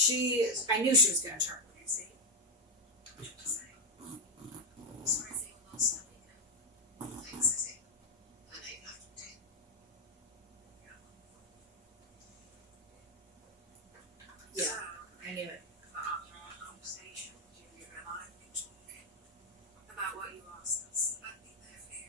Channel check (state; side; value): normal; both; correlation 0.05